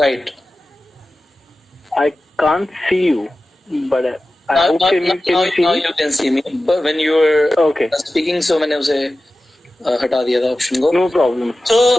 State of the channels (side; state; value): both; normal; correlation 0.95